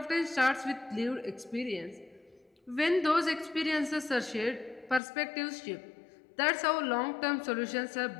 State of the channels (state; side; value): drops out; right; at 5.0 s